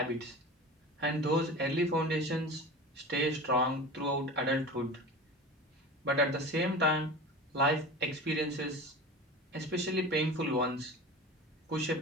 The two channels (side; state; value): both; normal; correlation 0.33